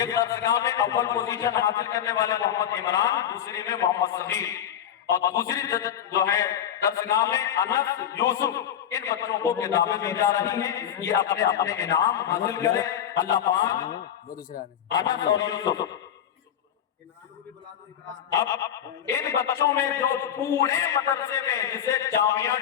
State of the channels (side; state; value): right; quieter; 9.6 dB